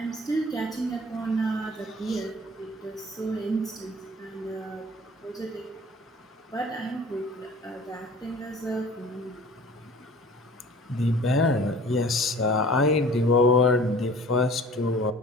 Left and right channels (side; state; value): both; normal; correlation 0.46